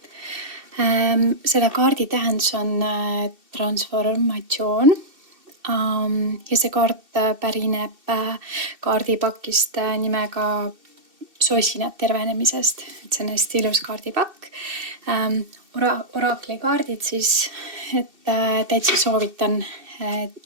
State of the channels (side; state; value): left; late; 2.7 ms